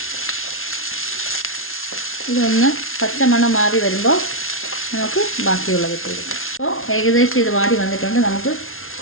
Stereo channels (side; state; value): right; late; 0.61 ms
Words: ഇതൊന്ന് പച്ചമണം മാറി വരുമ്പോൾ നമുക്ക് ബാക്കിയുള്ളത് ഇട്ട് കൊടുക്കാം. അപ്പോൾ ഏകദേശം ഇത് വാടി വന്നിട്ടുണ്ട്. നമുക്ക്